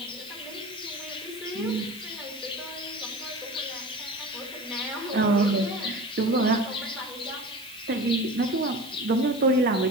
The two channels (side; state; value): right; noise; hiss, 18 dB below the sound